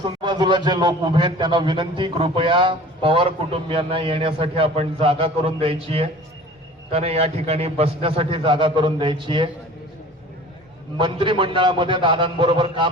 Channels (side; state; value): both; normal; correlation 0.43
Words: बाजूला जे लोक उभे आहेत त्यांना विनंती, कृपया पवार कुटुंबियांना येण्यासाठी आपण जागा करून द्यायची आहे. त्यांना या ठिकाणी बसण्यासाठी जागा करून द्यायची आहे. मंत्रिमंडळामध्ये दादांबरोबर